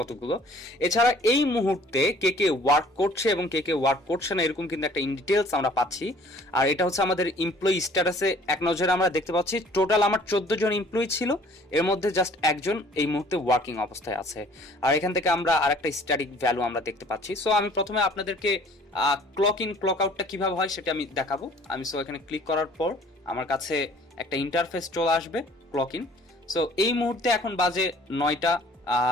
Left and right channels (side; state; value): both; normal; correlation 0.54